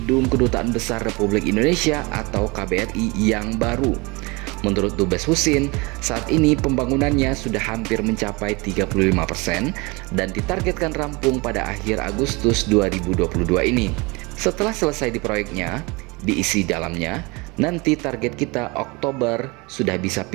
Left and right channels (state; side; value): quieter; left; 26.3 dB